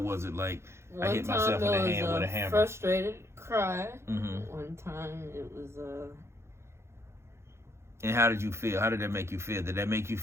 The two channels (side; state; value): left; late; 0.13 ms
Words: was it like I hit myself in the hand with a hammer? Frustrated cry. Mm-hmm. One time it was And how did you feel? How did that make you feel? Did that make you